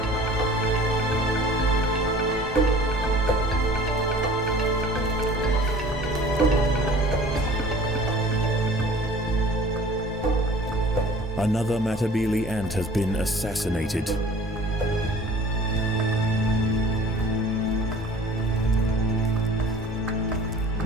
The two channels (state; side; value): normal; both; correlation 0.47